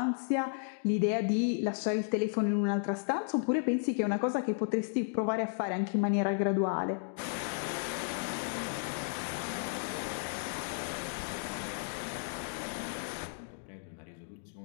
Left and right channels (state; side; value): silent; right; digital silence